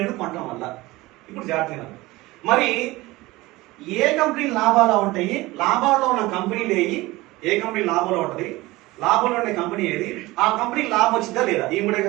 కొనడం వల్ల. ఇప్పుడు జాగ్రత్తగా మరి ఏ కంపెనీ లాభాలు ఉంటాయి, లాభాల్లో ఉన్న కంపెనీలు ఏవి, ఏ కంపెనీ లాభంలో ఉంటుంది, లాభంలో ఉండే కంపెనీ ఏది, ఆ కంపెనీకి లాభం వచ్చిందా లేదా, ఈ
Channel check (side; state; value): left; quieter; 20.1 dB